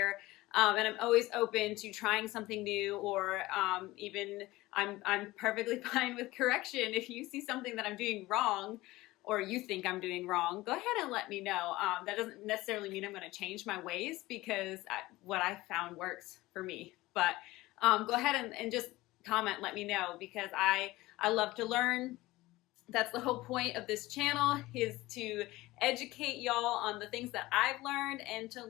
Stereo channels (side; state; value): right; quieter; 18.8 dB